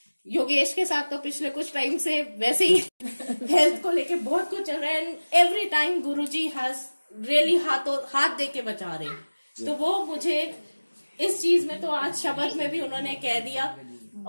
योगेश के साथ तो पिछले कुछ टाइम से वैसे ही हेल्थ को लेके बहुत कुछ चल रहा है, and every time Guru ji has really हाथ दे के बचा रहे। तो वो मुझे इस चीज में, तो आज शब्द में भी उन्होंने कह दिया,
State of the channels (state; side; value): inverted; both; correlation -1.00